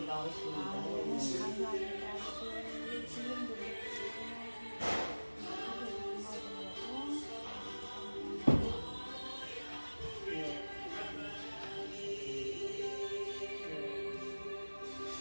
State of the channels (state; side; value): inverted; both; correlation -1.00